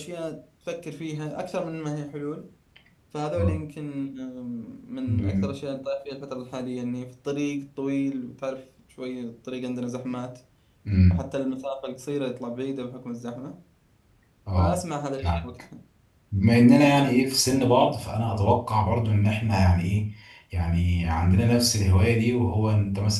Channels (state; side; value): identical; both; correlation 1.00